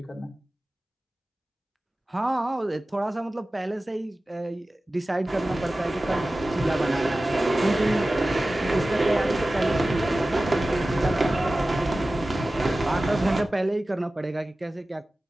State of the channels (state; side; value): normal; both; correlation 0.96